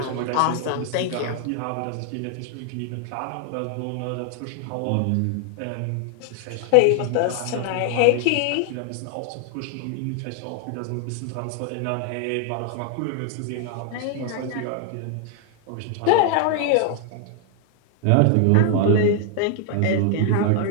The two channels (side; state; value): both; different; correlation 0.00